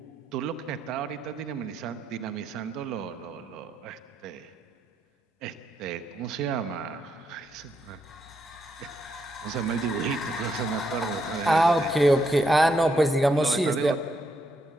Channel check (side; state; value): both; normal; correlation 0.78